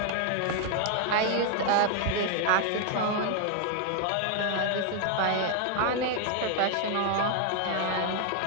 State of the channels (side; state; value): both; different; correlation 0.00